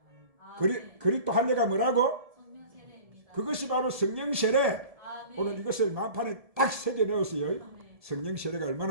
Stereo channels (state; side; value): late; left; 1.7 ms